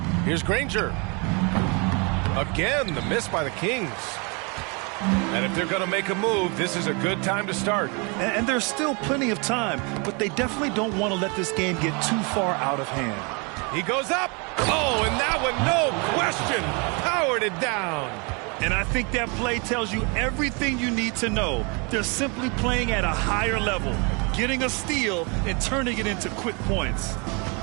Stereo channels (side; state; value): left; quieter; 31.9 dB